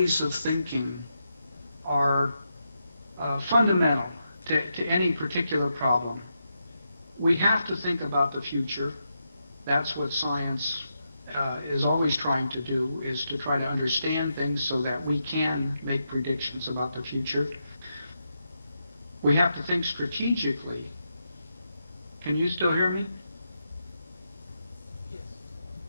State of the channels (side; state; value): both; inverted; correlation -0.84